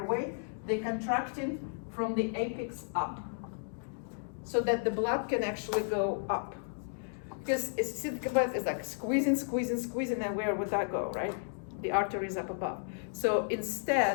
they contracting from the apex up, so that the blood can actually go up. Because think about it, it's like squeezing, and where would that go, right? The artery is up above. So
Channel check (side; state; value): right; silent; digital silence